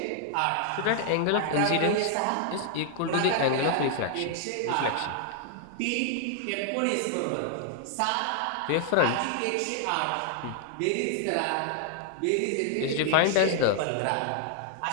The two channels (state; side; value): different; both; correlation 0.00